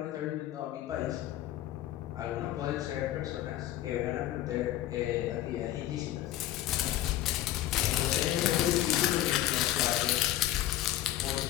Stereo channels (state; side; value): quieter; right; 13.8 dB